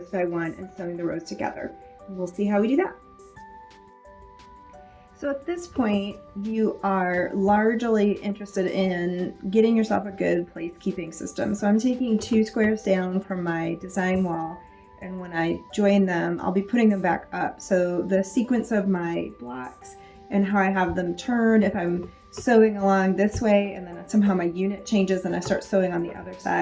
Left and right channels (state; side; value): identical; both; correlation 1.00